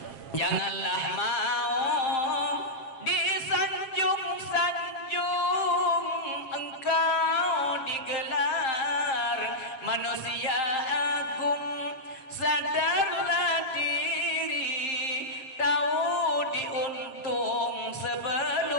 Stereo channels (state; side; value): late; right; 7.4 ms